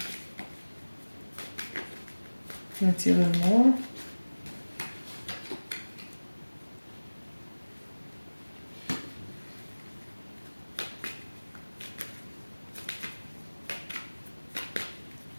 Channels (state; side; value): inverted; both; correlation -1.00